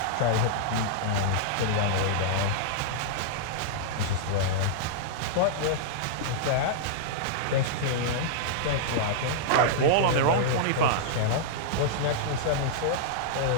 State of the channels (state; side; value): different; both; correlation -0.02